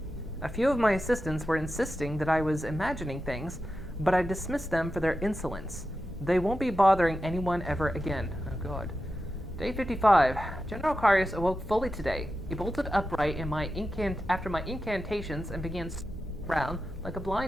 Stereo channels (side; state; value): both; normal; correlation 0.91